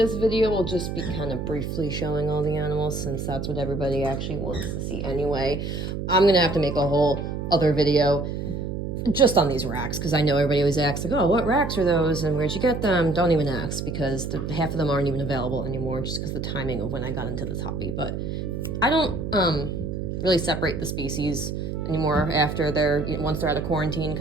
video will just be kind of briefly showing all the animals since that's what everybody actually wants to see anyway. I'm gonna have to make a whole other video just on these racks because I know everybody always asks like, oh, what racks are those and where'd you get them? Don't even ask because half of them aren't even available anymore just because the timing of when I got into this hobby. But I don't really separate the species anymore after once they're out of quarantine,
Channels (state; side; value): noise; right; hum, 4 dB below the sound